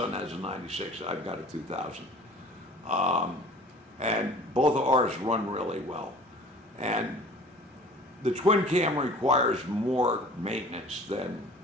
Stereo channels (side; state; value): both; normal; correlation 0.47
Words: has a 96, I've got a 2000. And both of ours run really well. And the twin cam requires more maintenance than